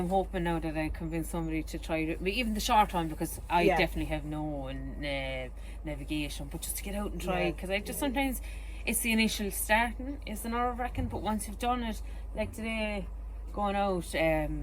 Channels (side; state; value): both; identical; correlation 1.00